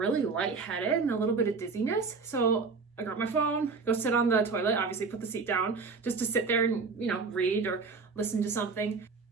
lightheaded and a little bit of dizziness. So I grab my phone, go sit on the toilet, obviously put the seat down just to sit there and, you know, read or listen to something.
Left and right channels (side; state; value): left; quieter; 4.6 dB